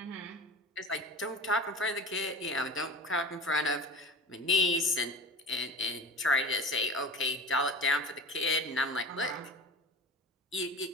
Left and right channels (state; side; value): normal; both; correlation 0.33